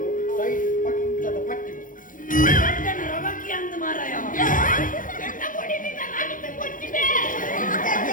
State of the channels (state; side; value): late; right; 0.39 ms